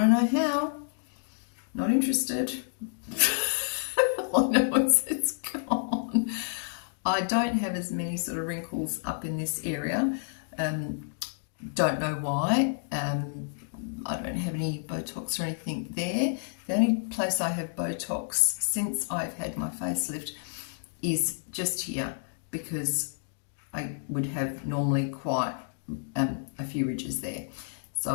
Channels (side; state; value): right; silent; digital silence